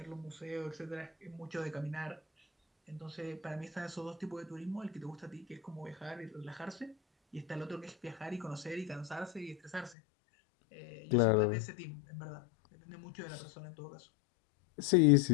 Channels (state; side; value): drops out; right; at 10.0 s